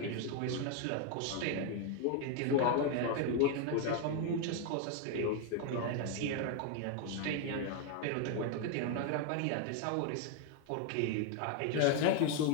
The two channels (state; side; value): different; both; correlation 0.01